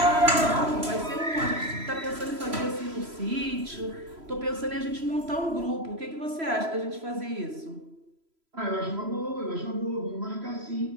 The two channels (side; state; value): left; late; 3.0 ms